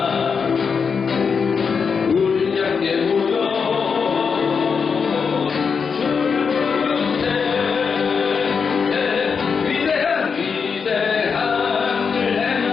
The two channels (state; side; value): quieter; right; 5.8 dB